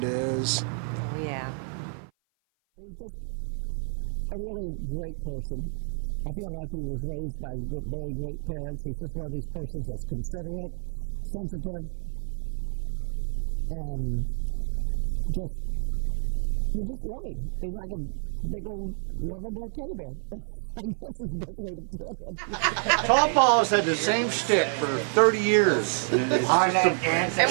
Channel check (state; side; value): silent; left; 55 dB below the other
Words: is. Oh, yeah. He's just a really great person. I feel like he was raised by very great parents. He's just one of these persons that's considerate, sensitive, and you just love him. He's like a big old lovable teddy bear. I guess is the best way to put it. Tawl Paul has had the same shtick for 30 years. And we love